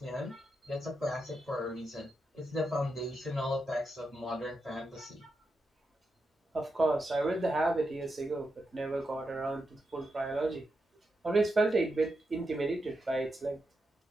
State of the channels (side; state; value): both; normal; correlation 0.87